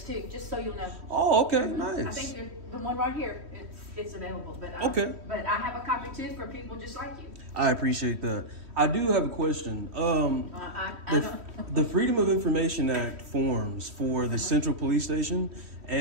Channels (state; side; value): late; left; 3.1 ms